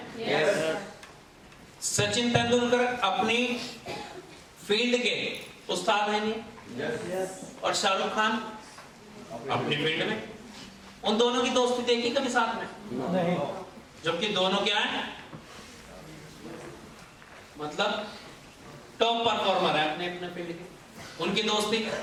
yes. सचिन तेंदुलकर अपनी फील्ड के उस्ताद हैं नहीं, yes. और शाहरुख खान अपनी फील्ड में, उन दोनों की दोस्ती देखी कभी साथ में? नहीं। जबकि दोनों क्या है, मतलब टॉप परफॉर्मर है अपने अपने फील्ड के, उनकी दोस्ती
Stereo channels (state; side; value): identical; both; correlation 1.00